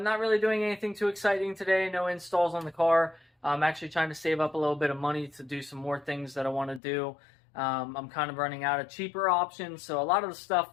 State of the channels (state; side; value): drops out; right; at 6.8 s